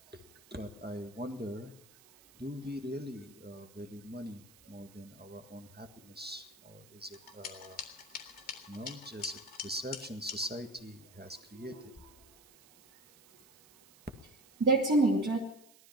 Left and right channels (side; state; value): right; noise; hiss, 24 dB below the sound